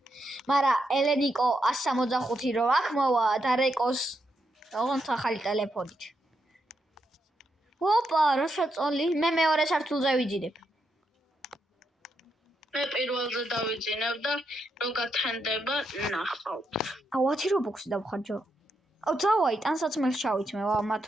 მაგრამ ელენიკო 165 რო აქ მოვა და რეკოს ოღონდ ახალი ტელეფონით. ოპა, რა შეწოლი? მე მეორე სართულზე ვიძინებ. მე პირველზე დავიძინებ და რო გათენდება, ნახავთ. აუ, 10 რობუქსი დავხარჯო. აუ, დავაი, ტანსაცმელს ჩავითმე, მათ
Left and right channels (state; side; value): normal; both; correlation 0.82